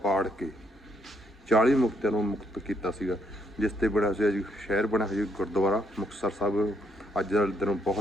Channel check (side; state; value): both; normal; correlation 0.73